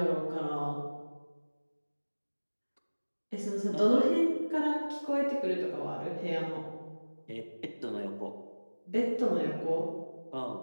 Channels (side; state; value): both; inverted; correlation -1.00